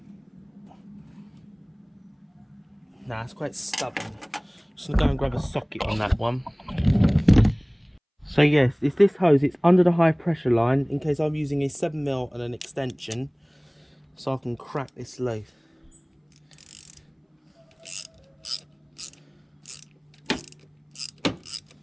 Nah, it's quite stubborn. Just gonna go and grab a socket on that one. So yes, it's this hose. It's under the high pressure line in case I'm using a 7mm and an extension, so I can crack this loose.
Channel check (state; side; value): identical; both; correlation 1.00